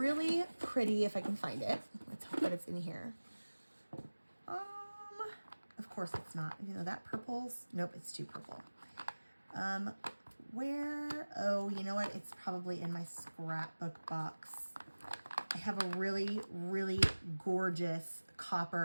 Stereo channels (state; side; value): inverted; both; correlation -1.00